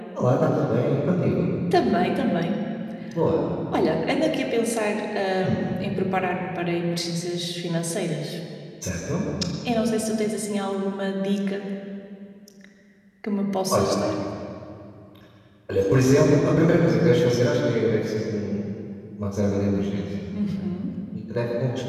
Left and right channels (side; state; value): both; identical; correlation 1.00